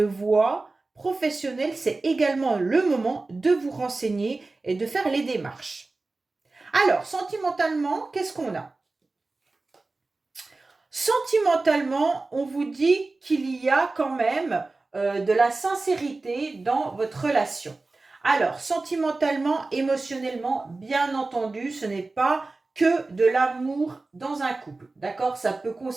voie professionnelle, c'est également le moment de vous renseigner et de faire les démarches. Alors, sentimentalement, qu'est-ce qu'on a? Sentimentalement, on vous dit qu'il y a quand même de la sincérité dans votre relation. Alors, sentimentalement, émotionnellement, bien entendu, ce n'est pas que de l'amour dans un couple. D'accord? Ça peut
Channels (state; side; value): quieter; left; 3.4 dB